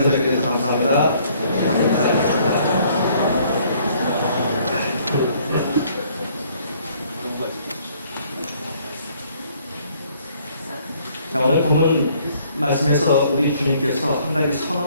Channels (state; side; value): inverted; both; correlation -0.62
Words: 뵙게 돼서 감사합니다. 감사합니다. 자, 오늘 본문 말씀에서 우리 주님께서 한 가지